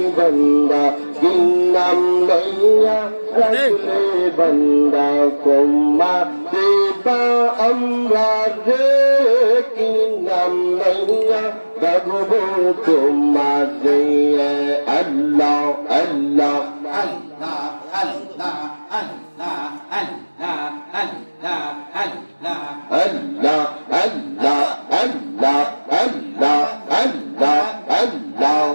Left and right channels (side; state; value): both; inverted; correlation -1.00